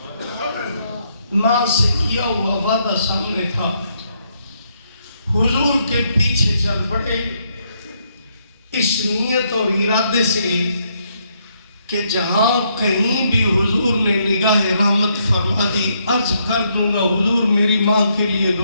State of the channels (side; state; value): both; inverted; correlation -0.75